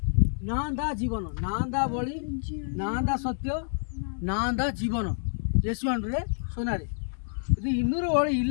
நான் தான் ஜீவனம். நான் தான் வழி, நான் தான் சத்தியம், நான் தான் ஜீவனம். இயேசுவாண்டவர் சொன்னார். இது இன்னொரு வழி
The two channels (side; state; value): right; silent; digital silence